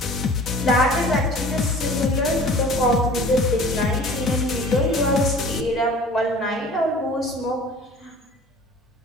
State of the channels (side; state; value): both; normal; correlation 0.45